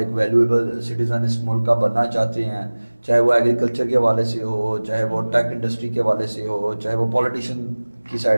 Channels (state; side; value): inverted; both; correlation -1.00